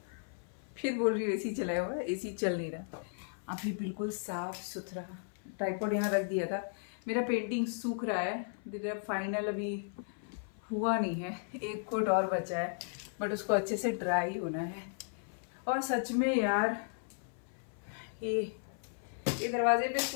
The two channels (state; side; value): silent; right; 54 dB below the other